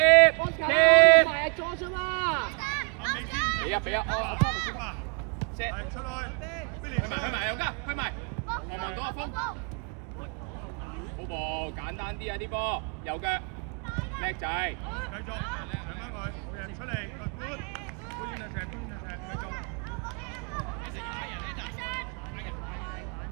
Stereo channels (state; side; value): quieter; left; 38.9 dB